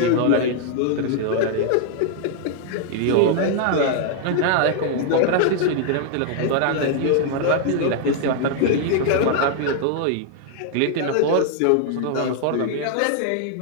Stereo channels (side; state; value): both; different; correlation 0.00